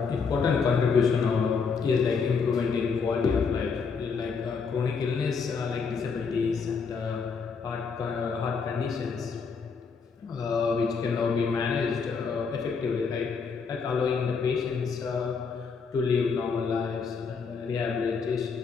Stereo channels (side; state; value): right; quieter; 5.4 dB